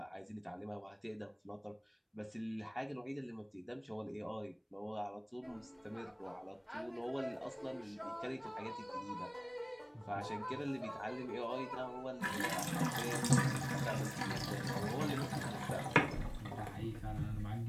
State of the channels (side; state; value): both; identical; correlation 1.00